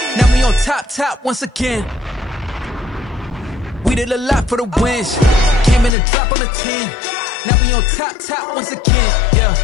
Now we on top once again. We did a lot for the wins. Came in a drop on the 10. Now we on top once again. Yeah.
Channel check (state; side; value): drops out; right; at 5.9 s